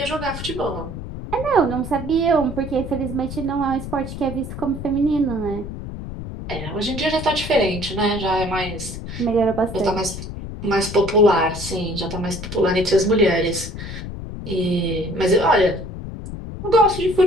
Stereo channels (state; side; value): noise; left; rumble, 8 dB below the sound